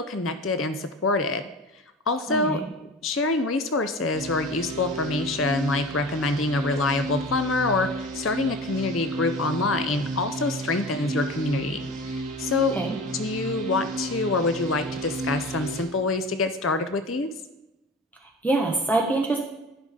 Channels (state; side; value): normal; both; correlation 0.36